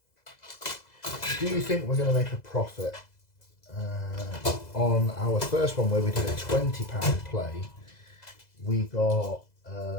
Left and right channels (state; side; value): late; right; 2.0 ms